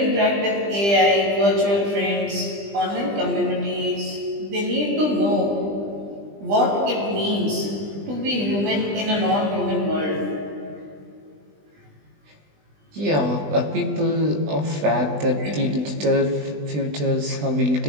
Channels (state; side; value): late; left; 20 ms